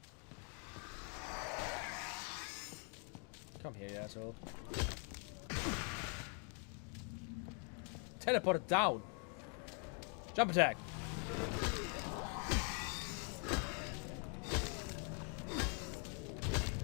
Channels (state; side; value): quieter; right; 39.6 dB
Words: Come here, you asshole. Teleport it down! Jump attack!